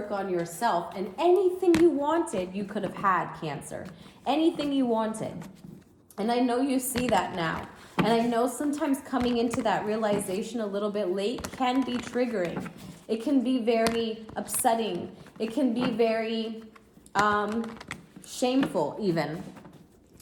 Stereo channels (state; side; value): identical; both; correlation 1.00